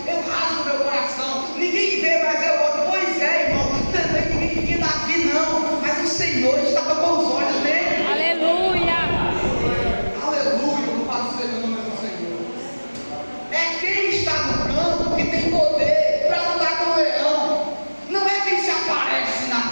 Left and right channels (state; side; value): inverted; both; correlation -1.00